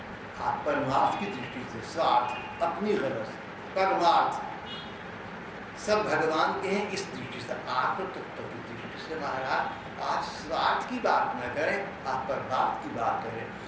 आप परमार्थ की दृष्टि से, स्वार्थ अपनी गरज, परमार्थ सब भगवान के हैं, इस दृष्टि से, आत्म तत्व की दृष्टि से महाराज आज स्वार्थ की बात न करें, आप परमार्थ की बात करें।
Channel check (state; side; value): identical; both; correlation 1.00